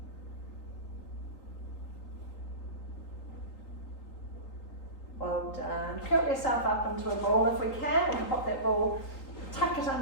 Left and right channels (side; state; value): right; late; 3.8 ms